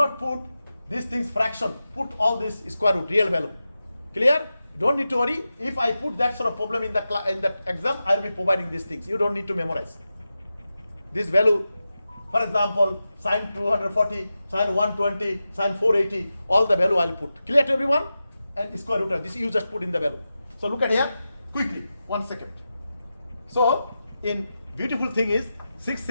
put these things fraction. Put all this square root, real value. Clear? You don't need to worry. If I put that sort of problem in the exam, I will be providing these things. You don't need to memorize. This value, for example, sine 240, sine 120, sine 480, all the value I will put. Clear to everyone? And square root of this, you just put in the value. So look at here, quickly, 1 second. So, in beautiful thing is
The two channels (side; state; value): both; inverted; correlation -0.92